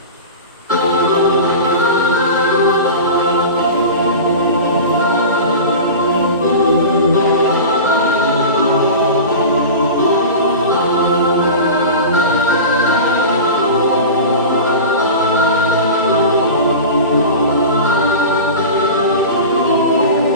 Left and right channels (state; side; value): inverted; both; correlation -0.30